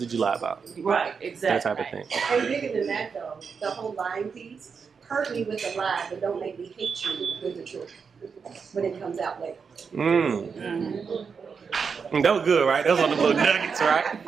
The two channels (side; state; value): left; quieter; 5.8 dB